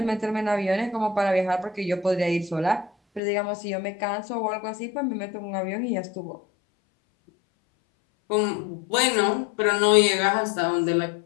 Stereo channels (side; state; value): right; drops out; at 3.2 s